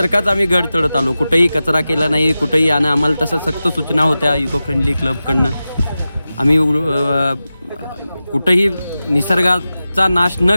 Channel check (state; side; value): inverted; both; correlation -0.94